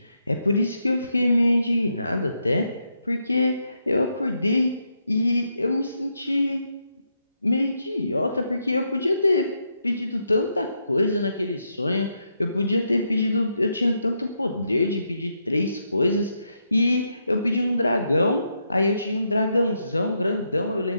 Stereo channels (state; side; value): inverted; both; correlation -0.80